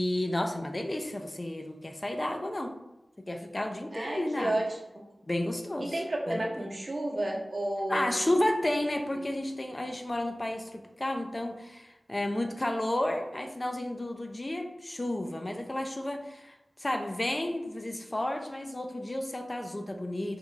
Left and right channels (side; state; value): both; normal; correlation 0.97